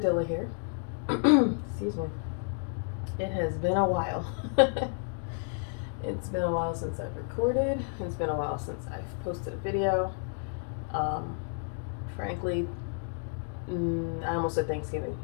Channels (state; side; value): silent; right; 57 dB below the other